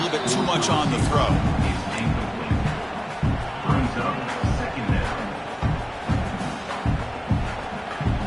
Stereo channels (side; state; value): both; identical; correlation 1.00